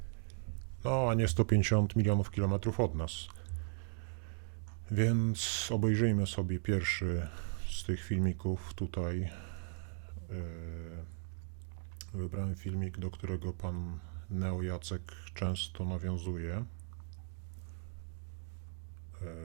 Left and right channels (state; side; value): silent; left; 53 dB below the other